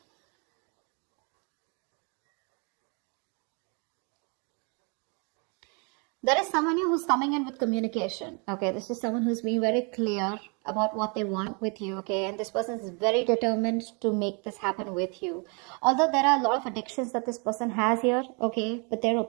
There is someone who's coming in with communication, okay? This is someone who's being very clear about what they want with you, okay? And this person is very determined to make this happen with you. Although there are a lot of addictions that this person has here, okay? But they're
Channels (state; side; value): quieter; left; 34.2 dB